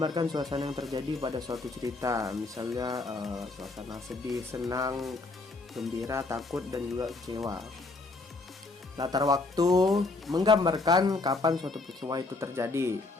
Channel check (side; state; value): right; quieter; 3.5 dB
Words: suasana yang terjadi pada suatu cerita. Misalnya suasana sedih, senang, gembira, takut, dan juga kecewa. Latar waktu, menggambarkan kapan suatu peristiwa itu terjadi.